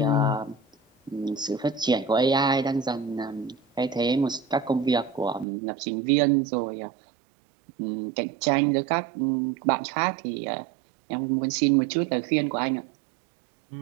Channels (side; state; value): left; drops out; at 5.5 s